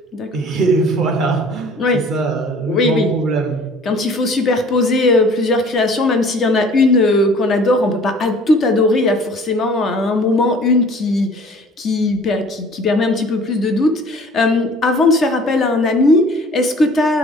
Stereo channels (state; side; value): normal; both; correlation 0.50